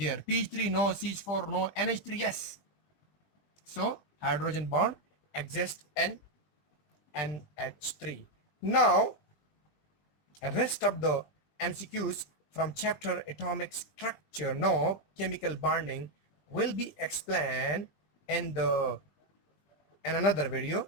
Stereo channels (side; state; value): right; late; 20 ms